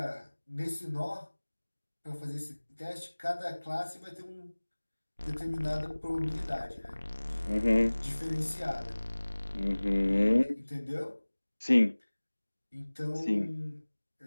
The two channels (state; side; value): inverted; both; correlation -1.00